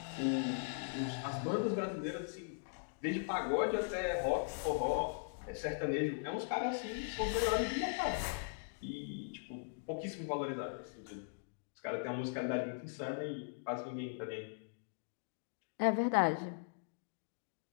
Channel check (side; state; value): right; silent; digital silence